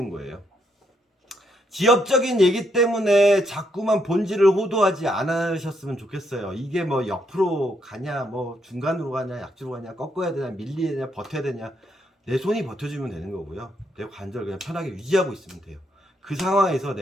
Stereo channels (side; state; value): both; normal; correlation 0.76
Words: 거예요. 지엽적인 얘기 때문에 자꾸만 본질을 호도하지 않으셨으면 좋겠어요. 이게 뭐 옆으로 가냐, 뭐 중간으로 가냐, 약지로 가냐, 꺾어야 되냐, 밀려야 되냐, 버텨야 되냐. 내 손이 버텨주면 되는 거고요. 내 관절 그냥 편하게 유지하고 있으면 돼요. 그 상황에서